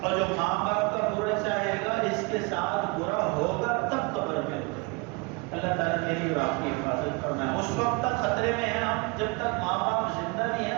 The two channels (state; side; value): quieter; left; 29.3 dB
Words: اور جو ماں باپ کا برا چاہے گا اس کے ساتھ برا ہوگا تب قبر میں. اللہ تعالیٰ میری اور آپ کی حفاظت فرمائے. اس وقت تک خطرے میں ہیں ہم جب تک ماں باپ زندہ نہیں ہیں